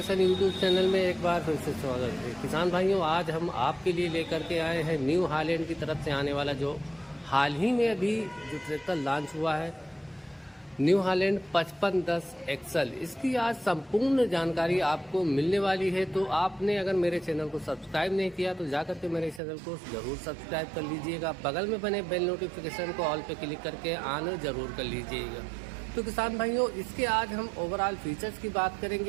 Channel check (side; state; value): left; drops out; at 19.4 s